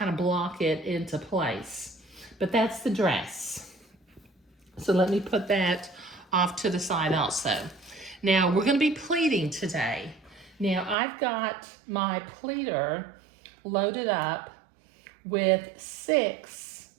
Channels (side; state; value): left; drops out; at 11.0 s